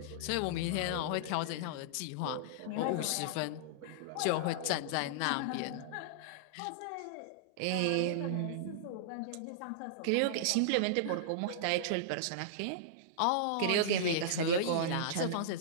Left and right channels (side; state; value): both; different; correlation -0.02